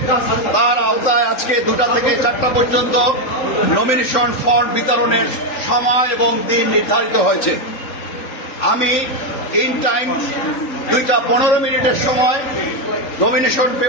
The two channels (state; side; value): late; right; 3.6 ms